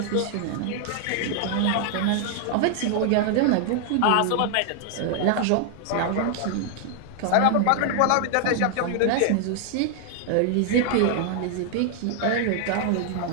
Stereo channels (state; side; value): different; both; correlation 0.00